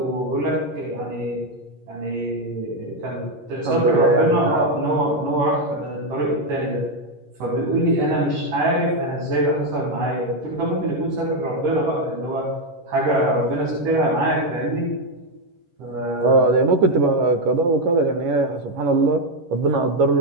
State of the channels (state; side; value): late; left; 11 ms